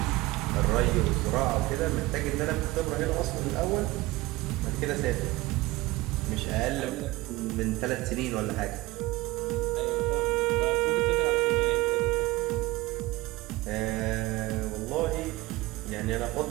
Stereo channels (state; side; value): quieter; left; 19.9 dB